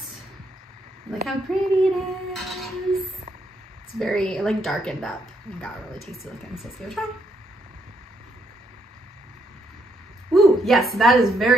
Look how pretty it is. It's very like darkened up and got really tasty looking, so let's give it a try. Ooh, yes, that is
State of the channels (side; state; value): both; normal; correlation 0.75